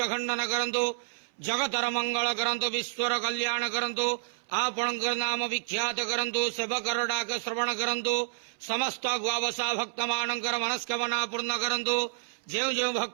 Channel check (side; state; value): left; silent; 58 dB below the other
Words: खंडन करंतु। जगतर मंगल करंतु। विश्वर कल्याण करंतु। आपणक नाम विख्यात करंतु। सेवकर डाक श्रवण करंतु। समस्त गुआवसा भक्त मानकर मनस्कामना पूर्ण करंतु। जो जो